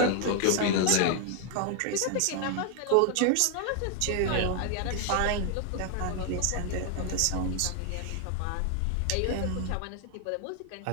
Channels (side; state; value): both; different; correlation 0.00